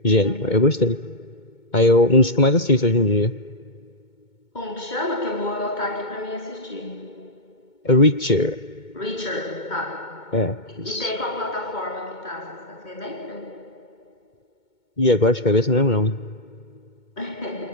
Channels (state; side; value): late; right; 2.2 ms